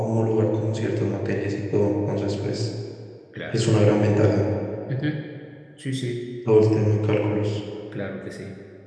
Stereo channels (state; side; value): identical; both; correlation 1.00